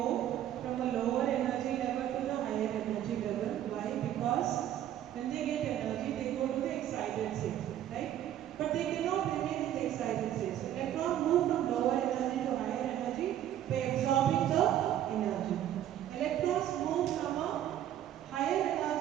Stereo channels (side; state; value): left; quieter; 11.5 dB